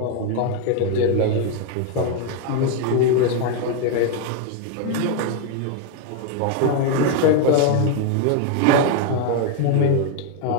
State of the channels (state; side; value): different; both; correlation 0.01